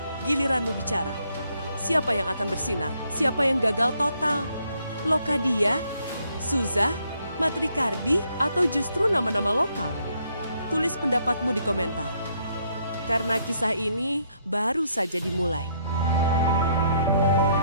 giliranmu bicara. Siapa yang akan bersinar? Siapa yang gagal total? Locadia, Souza, Matricardi, atau justru nama-nama lokal? Tulis pendapatmu di komentar. Karena kisah ini baru saja dimulai.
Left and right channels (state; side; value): inverted; both; correlation -0.71